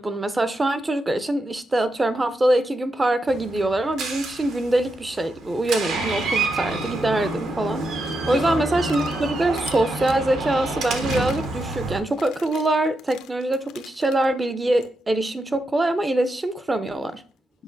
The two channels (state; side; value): normal; both; correlation 0.85